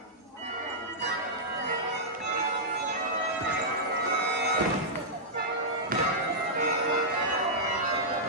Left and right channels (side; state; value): both; normal; correlation -0.10